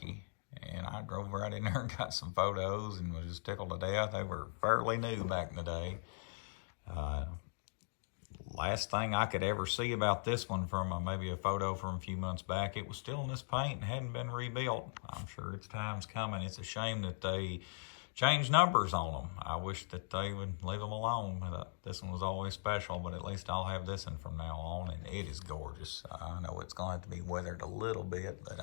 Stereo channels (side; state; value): right; silent; digital silence